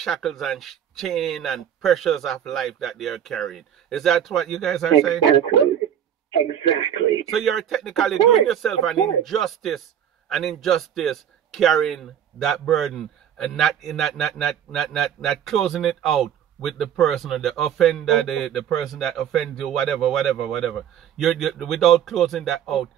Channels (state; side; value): quieter; left; 9.4 dB